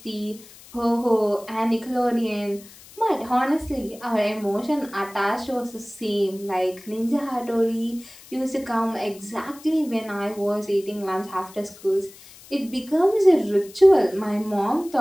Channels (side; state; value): left; noise; hiss, 21 dB below the sound